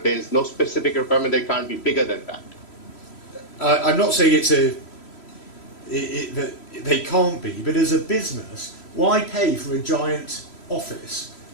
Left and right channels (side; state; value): right; late; 3.0 ms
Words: there is no specific requirement that it can't be bigger than that. I'm not saying that they can't be, but as a business, why pay for a giant office